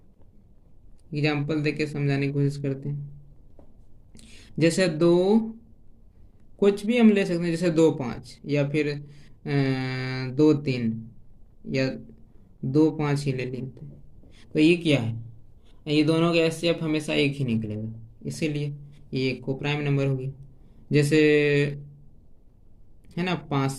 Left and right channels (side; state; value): both; identical; correlation 1.00